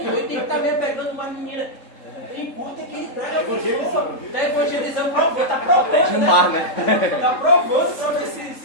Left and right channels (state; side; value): late; right; 3.7 ms